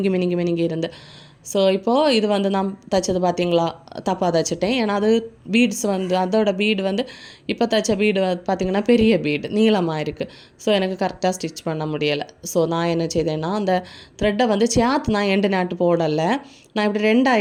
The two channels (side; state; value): both; identical; correlation 1.00